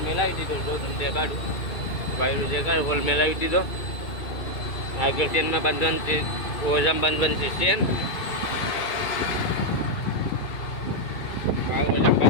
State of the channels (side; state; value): right; late; 2.4 ms